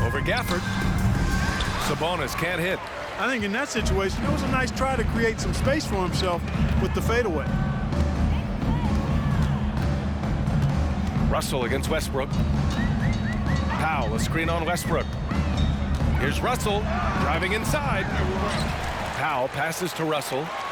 Over Gafford. Sabonis can't hit. I think in that situation, it was a nice try to create some space for himself with the fadeaway. Russell against Westbrook. Powell, a screen on Westbrook. Here's Russell driving inside. Powell passes to Russell.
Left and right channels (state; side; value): identical; both; correlation 1.00